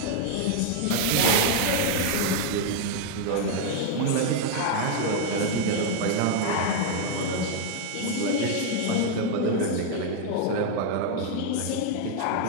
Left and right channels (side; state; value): both; different; correlation 0.00